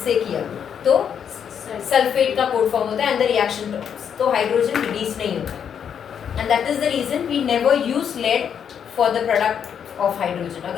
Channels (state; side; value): quieter; right; 8.0 dB